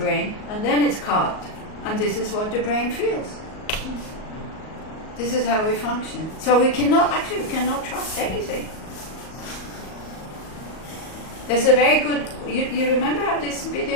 and then it's caught. And this is what the brain feels. This is how we function. So we cannot trust anything. There's a very good, you remember how this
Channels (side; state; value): right; late; 38 ms